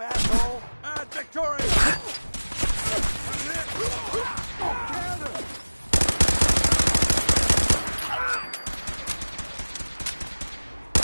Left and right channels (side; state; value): both; inverted; correlation -1.00